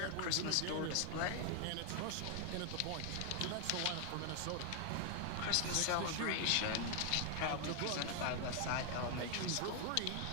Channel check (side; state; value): both; different; correlation 0.00